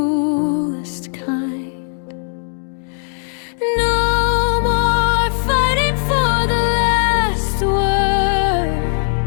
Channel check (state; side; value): silent; right; digital silence